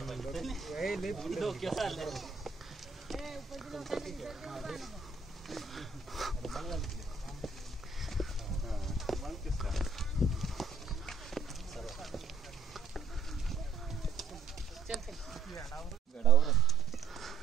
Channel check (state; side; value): quieter; left; 4.5 dB